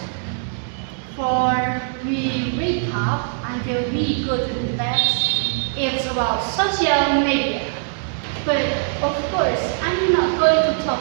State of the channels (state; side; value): silent; left; digital silence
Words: for we wake up until we go to bed. It's about social media. But of course, I'm not going to